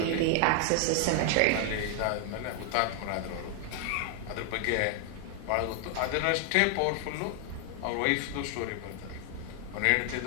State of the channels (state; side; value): different; both; correlation 0.00